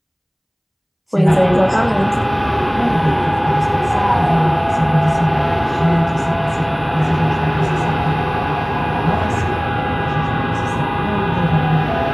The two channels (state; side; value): identical; both; correlation 1.00